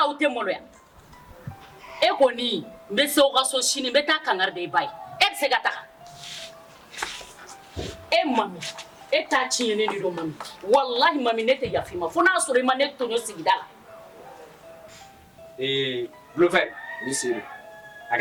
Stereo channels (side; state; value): both; identical; correlation 1.00